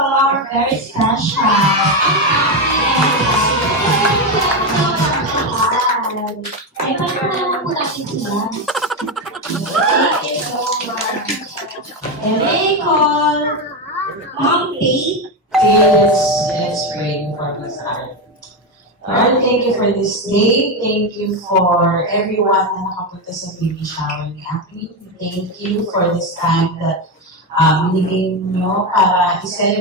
our very special ay, paano naman po natin sila? Call Mom Faith. Let's pray before we start. Lord, thank you for this day. Thank you for everyone na nakapunta sa baby shower ni Aki. Thank you for this time that binigay nyo para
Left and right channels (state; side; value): normal; both; correlation 0.11